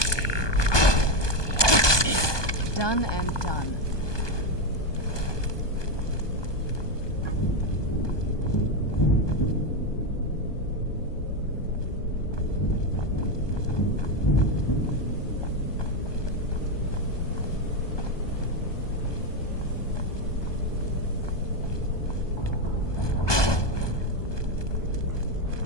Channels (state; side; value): late; right; 1.2 ms